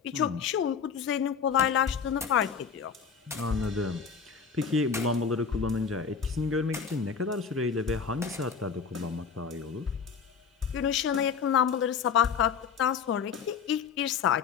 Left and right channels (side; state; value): right; quieter; 6.4 dB